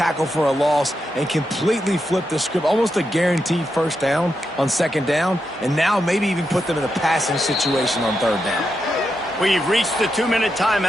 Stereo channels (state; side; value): normal; both; correlation 0.85